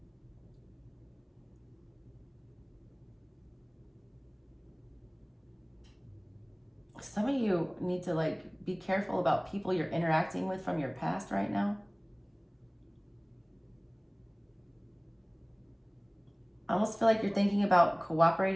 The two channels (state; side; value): identical; both; correlation 1.00